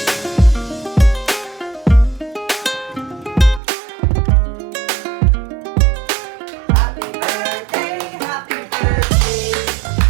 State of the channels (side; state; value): left; drops out; at 3.6 s